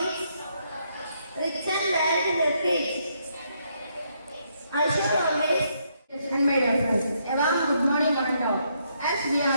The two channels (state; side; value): inverted; both; correlation -0.74